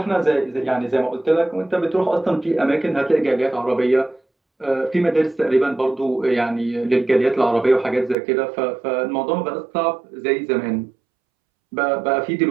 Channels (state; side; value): drops out; left; at 8.2 s